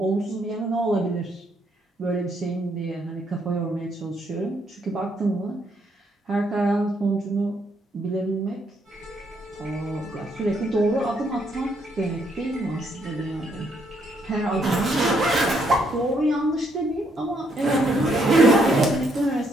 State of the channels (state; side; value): normal; both; correlation 0.72